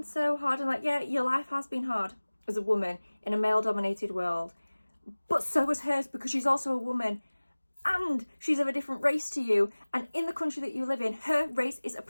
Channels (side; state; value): both; inverted; correlation -1.00